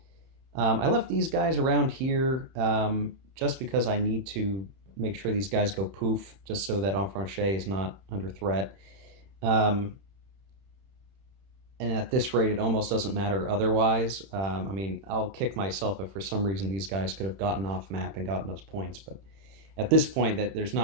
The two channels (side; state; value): left; late; 31 ms